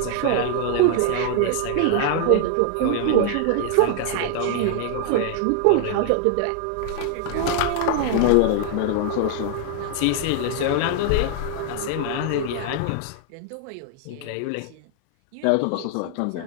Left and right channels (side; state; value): both; different; correlation 0.00